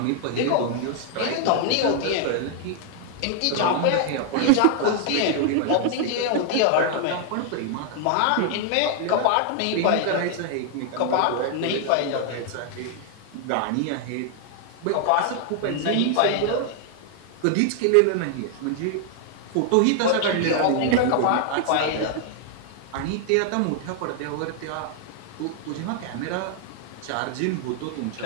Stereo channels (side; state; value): both; different; correlation 0.00